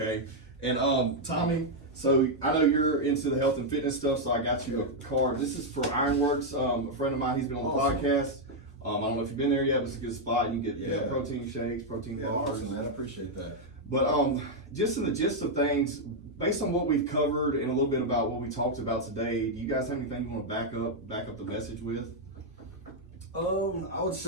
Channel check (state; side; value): normal; both; correlation -0.01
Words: And Tommy, so I know you're into the health and fitness stuff, so I got you a card. This is for Ironworks. A friend of mine, he's been on the podcast. I don't know if you've been there yet, but it's a good spot. You can get protein shakes, protein bars. Awesome, man. I appreciate that. But just in the gist of things, based on what we've covered and a little bit about what we talked about today, do you guys have anything you want to back up the message with? I would